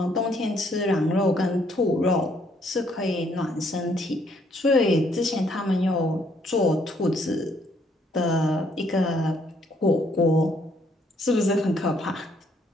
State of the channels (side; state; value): both; normal; correlation 0.68